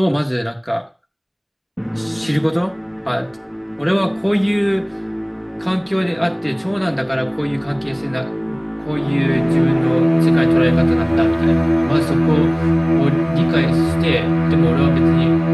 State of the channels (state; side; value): identical; both; correlation 1.00